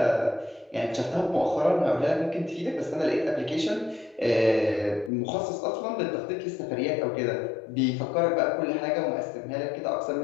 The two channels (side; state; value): right; drops out; at 5.1 s